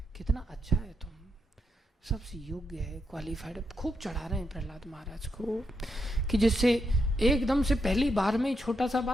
कितना अच्छा है तुम, सबसे योग्य है, क्वालिफाइड है। खूब चढ़ा रहे हैं प्रहलाद महाराज को कि जिससे एकदम से पहली बार में ही छोटा सा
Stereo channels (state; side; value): normal; both; correlation 0.82